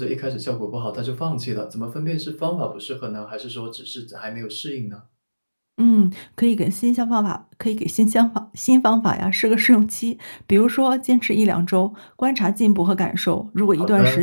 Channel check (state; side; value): inverted; both; correlation -1.00